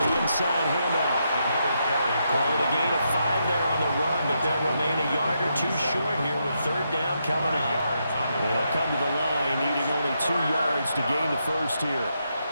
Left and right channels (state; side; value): inverted; both; correlation -0.81